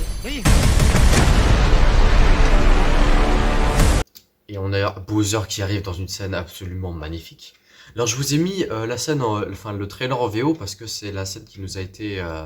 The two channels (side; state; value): both; identical; correlation 1.00